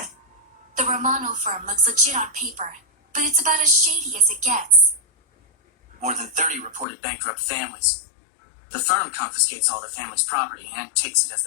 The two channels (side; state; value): right; drops out; at 6.9 s